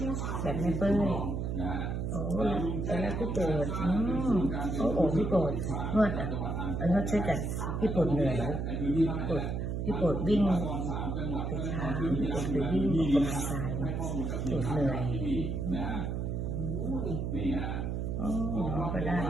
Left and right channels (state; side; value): noise; right; hum, 2 dB below the sound